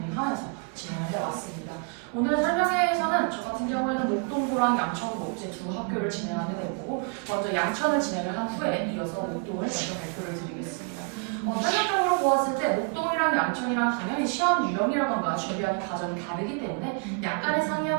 진행을 해왔습니다. 오늘 설명회에서는 저 같은 경우에는 목동고랑 양천고 이제 두 학교를 진행하게 되고 먼저 양천을 진행을 한 후에 이어서 목동을 먼저 발표를 드리겠습니다. 설명적으로 보았을 때 목동이랑 양천이랑 당연히 시험 유형이라던가 준비하는 과정이 다르기 때문에 약간의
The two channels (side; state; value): left; quieter; 35.5 dB